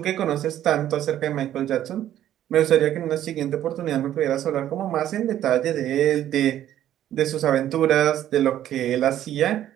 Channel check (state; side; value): quieter; left; 11.9 dB